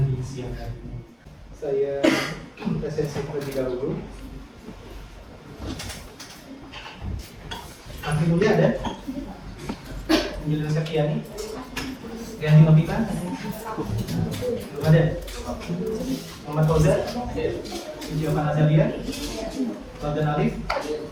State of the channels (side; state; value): both; identical; correlation 1.00